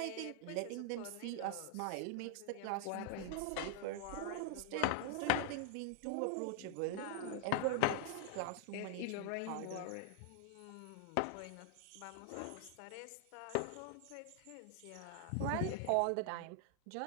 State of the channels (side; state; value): both; different; correlation 0.00